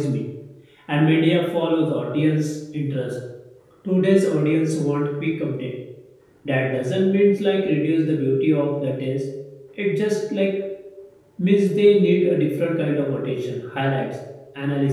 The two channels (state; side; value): identical; both; correlation 1.00